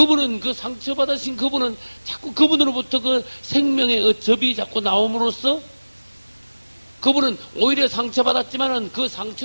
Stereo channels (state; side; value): inverted; both; correlation -1.00